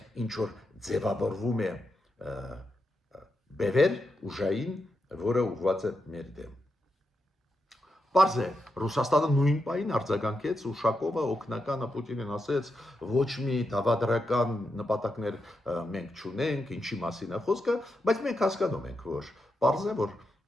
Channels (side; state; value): both; normal; correlation 0.86